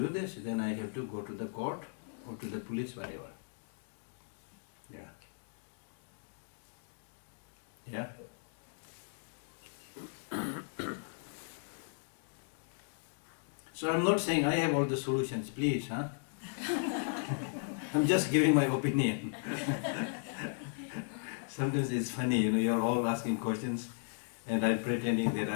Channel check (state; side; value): silent; right; digital silence